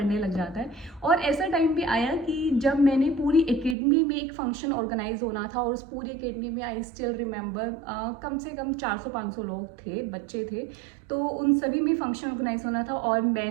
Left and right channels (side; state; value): left; drops out; at 3.8 s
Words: लग जाता है। और ऐसा टाइम भी आया कि जब मैंने पूरी एकेडमी में एक फंक्शन ऑर्गेनाइज होना था, और उस पूरी एकेडमी में आई स्टिल रिमेंबर कम से कम 400-500 लोग थे, बच्चे थे, तो उन सभी में फंक्शन ऑर्गेनाइज होना था और